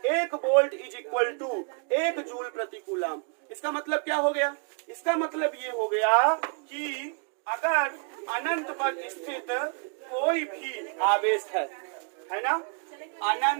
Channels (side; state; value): left; quieter; 37.7 dB